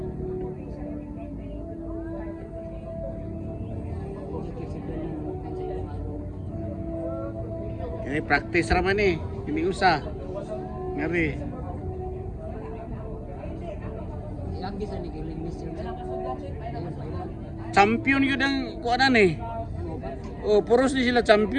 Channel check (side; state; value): both; identical; correlation 1.00